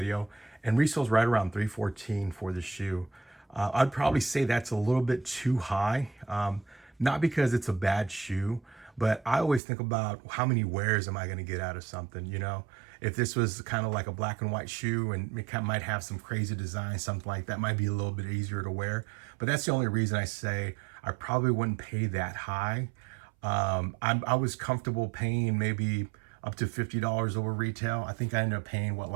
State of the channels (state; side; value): drops out; left; at 9.6 s